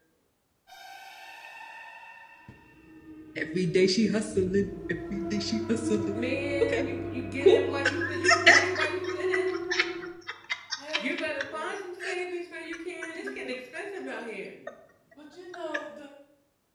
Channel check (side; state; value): both; identical; correlation 1.00